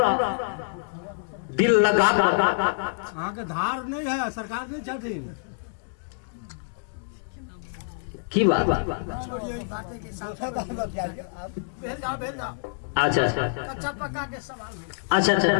दिल लगा के धार नहीं है, सरकार नहीं चाहती की बात। अच्छा कच्चा पक्का के सवाल अच्छा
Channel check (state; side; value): silent; right; digital silence